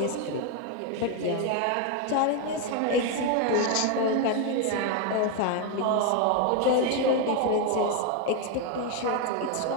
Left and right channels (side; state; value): both; different; correlation 0.01